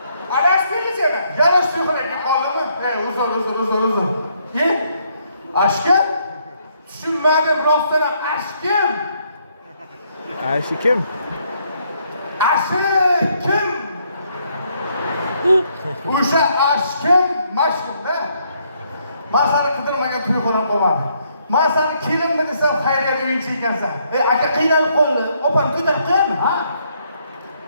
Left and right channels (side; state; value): both; inverted; correlation -0.71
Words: Adashmaydi seni. Yarash to'yxonaga qoldimi? Uzr. Ashkim? Tushunmadim, rostdan ashkim. Ashi kim? Ashkim. O'sha ashkim mashhurda. Men seni qidirmagan to'yxona qo'ymadim. Men seni kelinmi desam xayriyat o'yinchi ekansan. Aka qiynalib qoldi. Opam ko'tarib qo'yami? Ha?